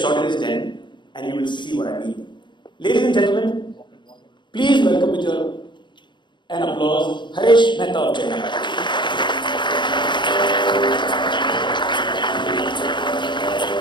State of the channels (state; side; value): late; right; 0.23 ms